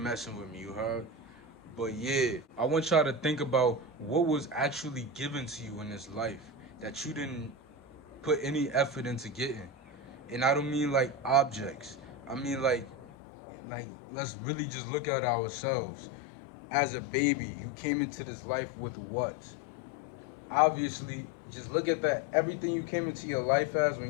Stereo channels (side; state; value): right; drops out; at 13.1 s